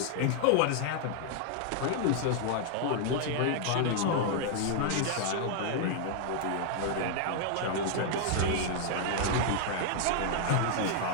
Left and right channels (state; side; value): different; both; correlation 0.00